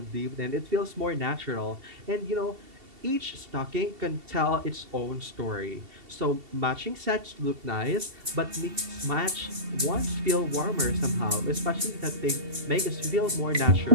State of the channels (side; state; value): left; late; 2.7 ms